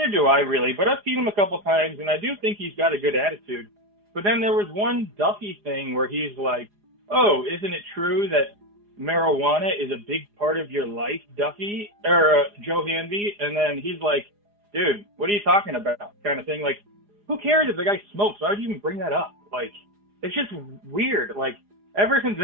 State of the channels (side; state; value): left; late; 4.9 ms